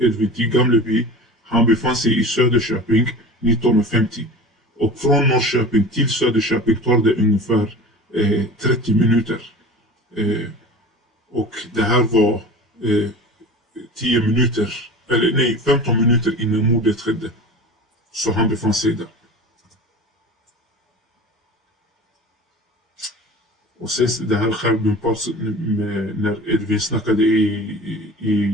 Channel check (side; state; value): both; normal; correlation 0.36